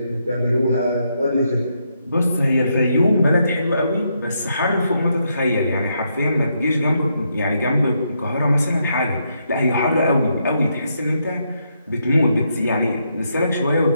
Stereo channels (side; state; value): both; inverted; correlation -0.79